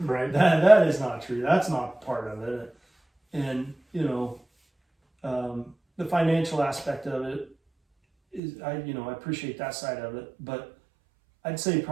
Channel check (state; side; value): drops out; left; at 8.4 s